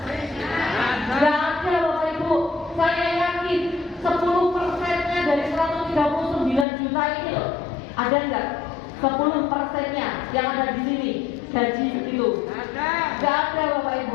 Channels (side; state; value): right; drops out; at 6.7 s